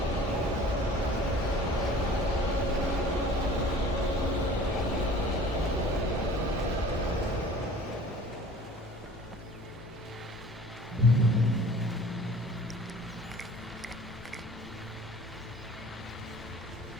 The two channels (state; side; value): normal; both; correlation 0.46